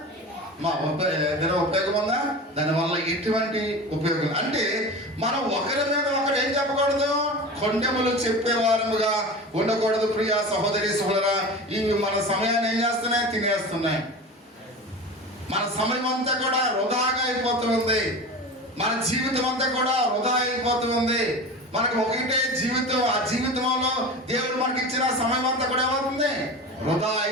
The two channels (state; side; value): normal; both; correlation 0.31